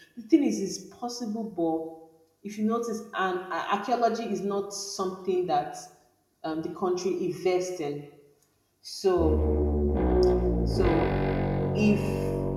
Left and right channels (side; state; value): both; identical; correlation 1.00